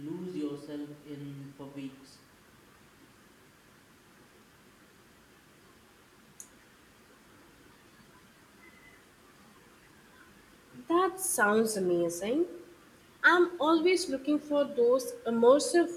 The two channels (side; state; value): both; identical; correlation 1.00